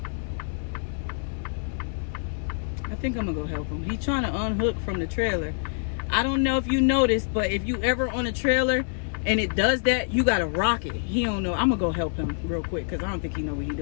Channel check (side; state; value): right; silent; digital silence